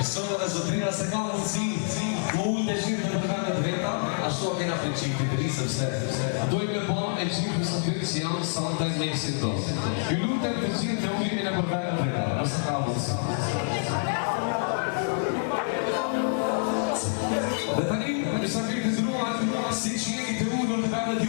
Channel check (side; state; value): right; silent; digital silence